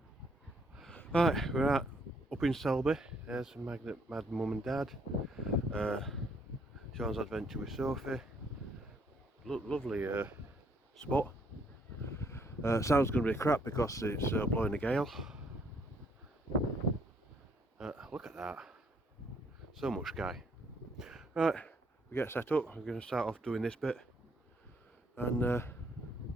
Right, we're up in Selby. There's Magnet Mad Mum and Dad. Sean's adventure with Sophie. Lovely spot. Sound's going to be crap because it's blowing a gale. Look at that. So much sky. Right, we get set up. We're going to start off doing this bit. And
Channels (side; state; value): both; normal; correlation 0.68